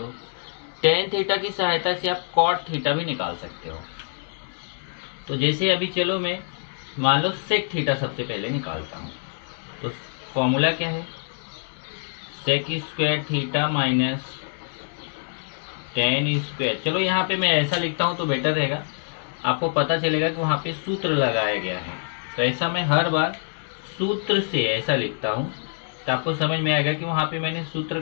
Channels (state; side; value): silent; right; digital silence